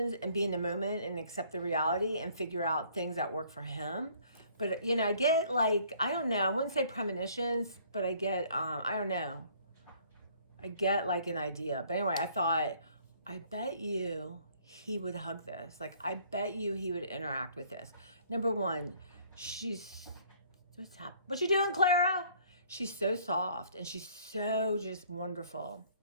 and be in the moment and accept the reality and figure out things that work for him. But, you know, I get like, I don't know, I wouldn't say premonitions, but I get, I don't know. I get like an idea. But anyway, I thought, I bet you he would hug this. Like, I bet you he would interact with this. Number one, what's happening? What you doing, Clara? She's so soft, and she's so just wonderful.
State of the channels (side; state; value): both; inverted; correlation -0.59